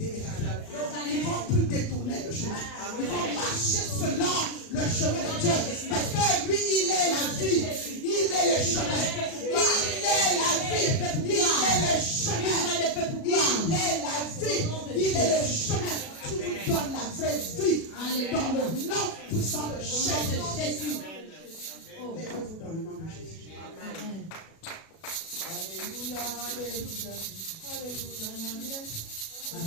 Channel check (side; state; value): right; late; 37 ms